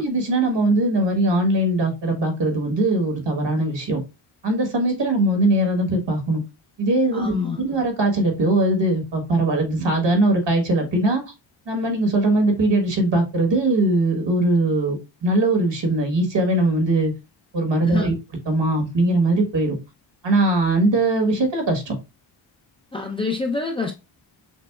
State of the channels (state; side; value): normal; both; correlation 0.38